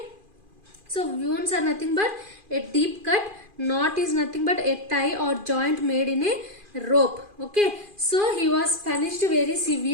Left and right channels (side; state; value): left; late; 2.4 ms